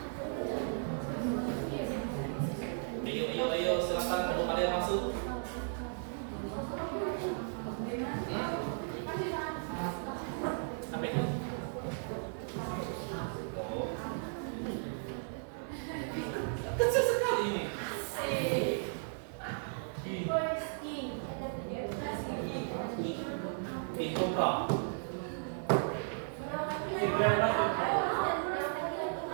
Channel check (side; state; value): left; silent; digital silence